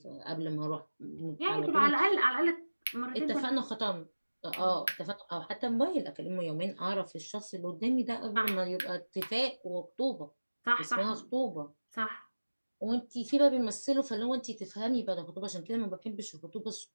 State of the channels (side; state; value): both; inverted; correlation -1.00